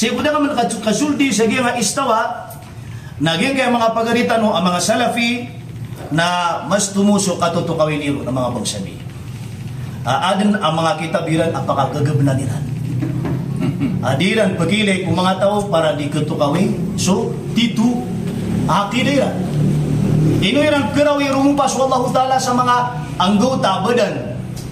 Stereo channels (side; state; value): both; identical; correlation 1.00